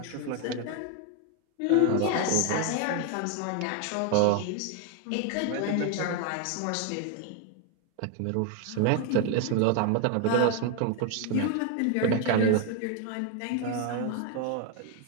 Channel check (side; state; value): both; different; correlation 0.01